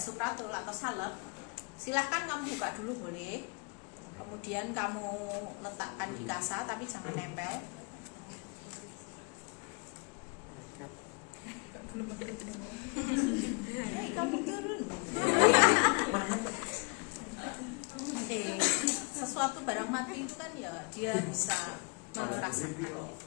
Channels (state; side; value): quieter; right; 33.5 dB